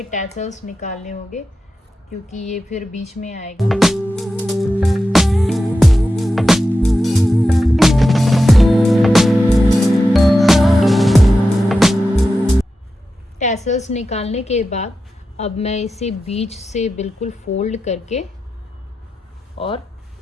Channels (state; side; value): normal; both; correlation 0.91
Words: टैसल्स निकालने होंगे, क्योंकि ये फिर बीच में आएगा। टैसल्स निकालने के बाद अब मैं इसे बीच से बिल्कुल फोल्ड करके और